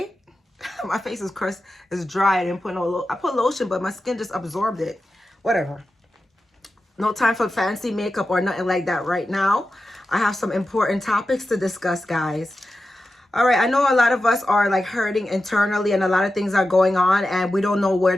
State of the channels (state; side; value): normal; both; correlation 0.92